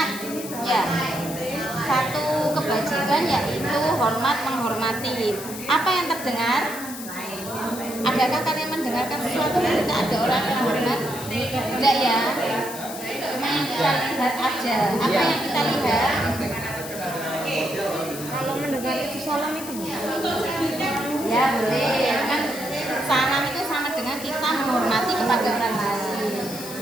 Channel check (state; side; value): noise; left; hiss, 11 dB below the sound